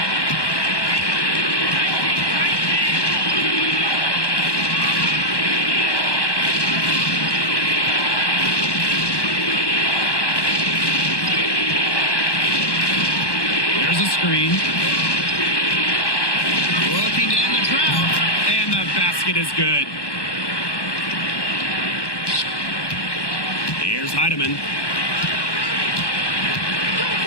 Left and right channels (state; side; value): late; right; 1.2 ms